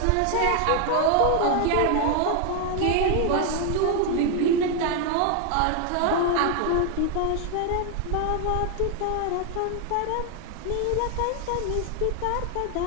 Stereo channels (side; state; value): both; different; correlation 0.00